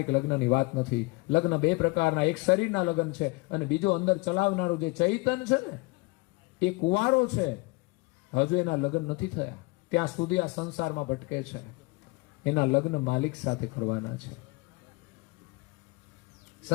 લગ્નની વાત નથી. લગ્ન બે પ્રકારના, એક શરીરના લગ્ન છે અને બીજું અંદર ચલાવનારું જે ચૈતન છે ને એ કુંવારો છે, હજુ એના લગ્ન નથી થયા, ત્યાં સુધી આ સંસારમાં ભટકે છે. એના લગ્ન માલિક સાથે કરવાના છે.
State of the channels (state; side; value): quieter; right; 25.8 dB